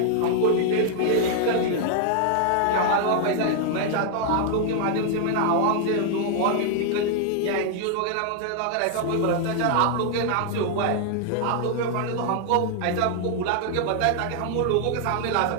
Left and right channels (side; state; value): both; different; correlation 0.00